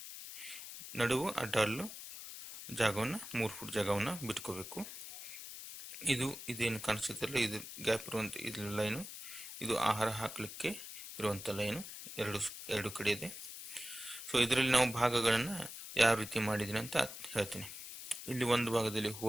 ನಡುವು ಅಡ್ಡಲ್ಲು ಜಾಗವನ್ನು 3 ಫೂಟ್ ಜಾಗವನ್ನು ಬಿಟ್ಕೋಬೇಕು. ಇದೇನು ಕಾಣಿಸುತ್ತಲ್ಲ, ಇದು ಗ್ಯಾಪ್ ಇರುವಂಥ ಇದು ಲೈನು, ಇದು ಆಹಾರ ಹಾಕಲಿಕ್ಕೆ ಇರುವಂಥ ಲೈನು ಎರಡು ಕಡೆ ಇದೆ. ಸೊ ಇದರಲ್ಲಿ ನಾವು ಭಾಗಗಳನ್ನು ಯಾವ ರೀತಿ ಮಾಡಿದ್ದೀನಿ ಅಂತ ಹೇಳ್ತೀನಿ. ಇಲ್ಲಿ ಒಂದು ಭಾಗದಲ್ಲಿ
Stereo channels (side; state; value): left; noise; hiss, 10 dB below the sound